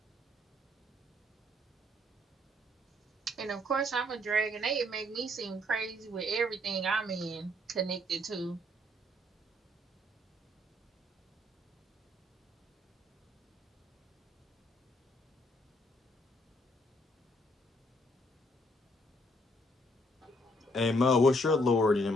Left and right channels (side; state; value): both; normal; correlation 0.68